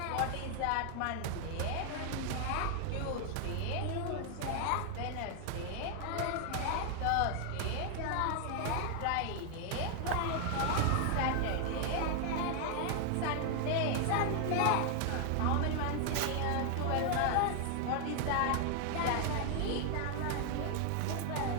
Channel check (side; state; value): both; different; correlation 0.00